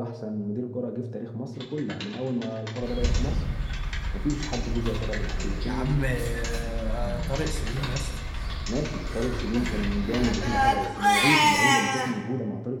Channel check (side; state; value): both; identical; correlation 1.00